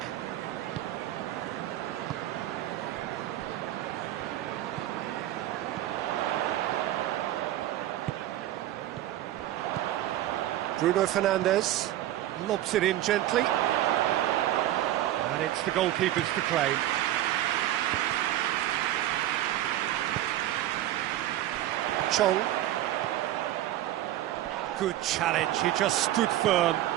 Bruno Fernandes lobs it in gently, and it's the goalkeeper's to claim. Chong. Good challenge, he just stood firm.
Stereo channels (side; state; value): left; quieter; 13.7 dB